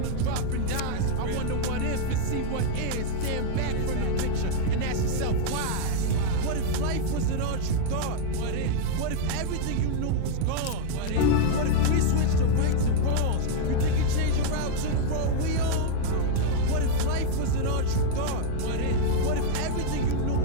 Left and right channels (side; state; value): both; different; correlation -0.01